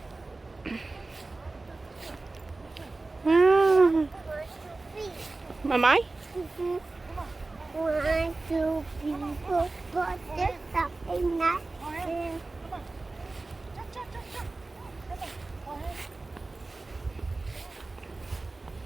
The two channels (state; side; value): quieter; left; 3.3 dB